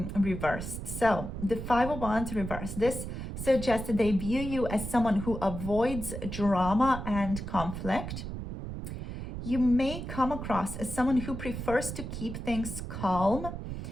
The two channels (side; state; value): right; noise; rumble, 7 dB below the sound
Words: reversed. So the Five of Wands reversed. This suggests that they view you as someone who avoids drama and conflict. You may come across as someone who prefers to keep things calm,